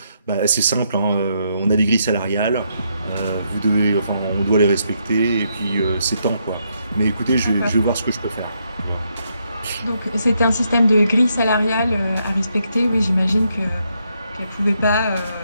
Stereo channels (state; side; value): inverted; both; correlation -0.77